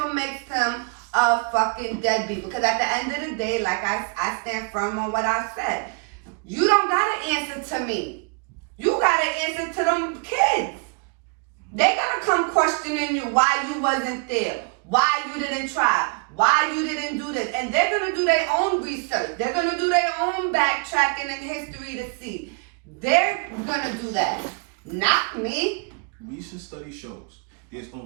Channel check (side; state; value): left; quieter; 35.3 dB